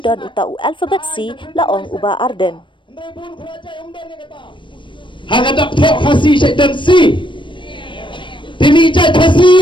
utau alphabet C laong uba Arden hagadak tok kasi syaitan C tini jai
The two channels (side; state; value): right; late; 0.24 ms